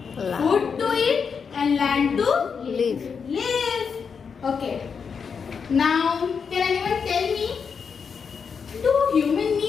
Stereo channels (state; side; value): quieter; right; 6.1 dB